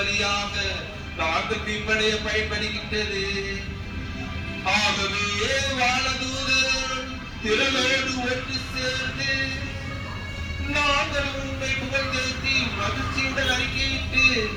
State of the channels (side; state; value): both; identical; correlation 1.00